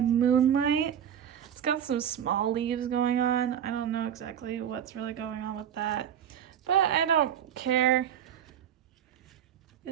Moonlight. It's got some small leaves going on. I don't know exactly what's really going on with that, but I don't care.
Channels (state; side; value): quieter; left; 9.3 dB